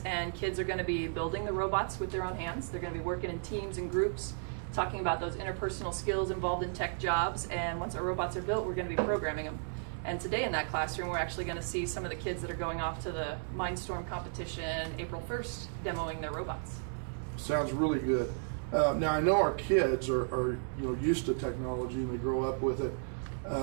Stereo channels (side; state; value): left; silent; digital silence